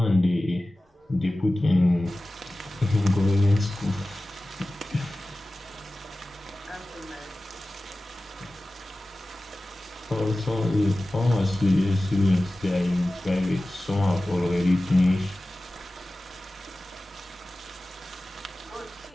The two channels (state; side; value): normal; both; correlation 0.96